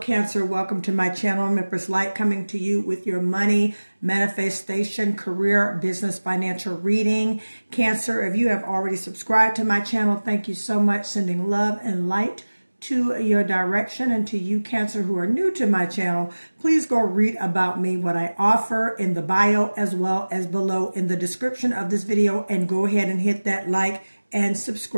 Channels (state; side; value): inverted; both; correlation -1.00